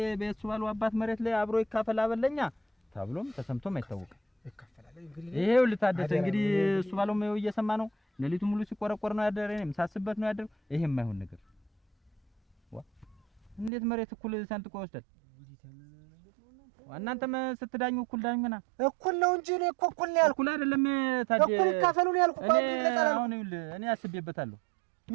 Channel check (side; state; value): left; drops out; at 13.7 s